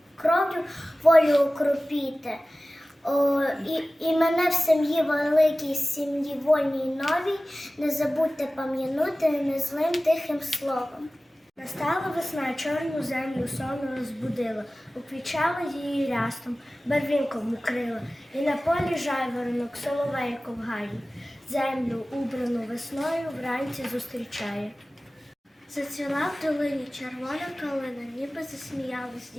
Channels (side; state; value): both; normal; correlation 0.97